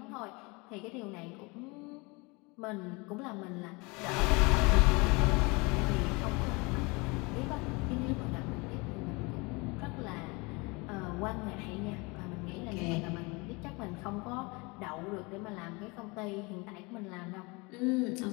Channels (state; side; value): quieter; right; 27.0 dB